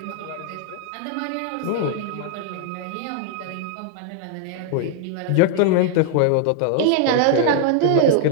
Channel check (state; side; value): different; both; correlation 0.00